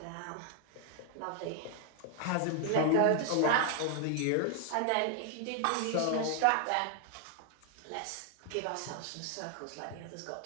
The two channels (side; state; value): both; different; correlation 0.00